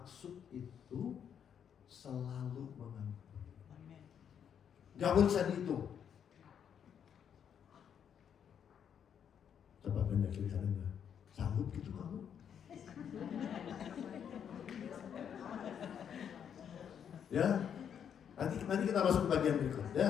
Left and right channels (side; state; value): right; quieter; 8.3 dB